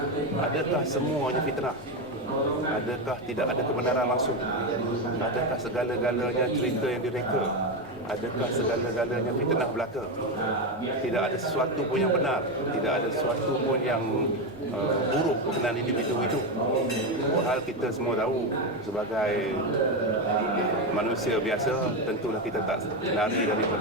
adakah semuanya fitnah? Adakah tidak ada kebenaran langsung? Adakah segala-galanya cerita yang direka? Adakah segala-galanya fitnah belaka? Tidak ada sesuatu pun yang benar, tidak ada sesuatu pun yang buruk berkenaan individu itu. Hal kita semua tahu sebagai manusia biasa, tentulah kita tak lari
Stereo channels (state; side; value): normal; both; correlation 0.12